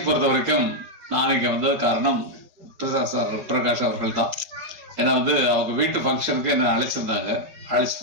பொறுத்த வரைக்கும் நான் இங்கே வந்தது காரணம் பிரகாஷ் அவர்கள் தான். ஏன்னா வந்து அவங்க வீட்டு ஃபங்க்ஷனுக்கு என்ன அழைச்சிருந்தாங்க. அழைச்ச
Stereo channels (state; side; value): late; left; 5.3 ms